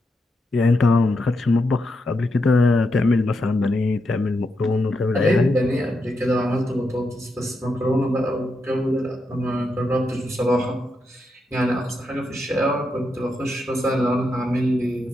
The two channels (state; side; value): normal; both; correlation 0.84